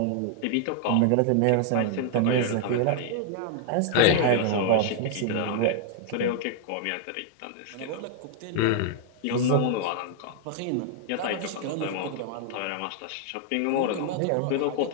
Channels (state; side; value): different; both; correlation -0.01